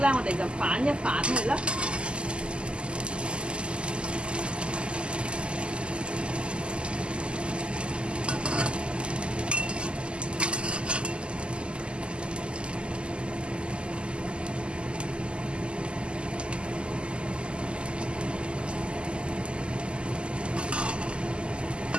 我哋就反一反佢啦。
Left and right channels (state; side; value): late; left; 0.051 ms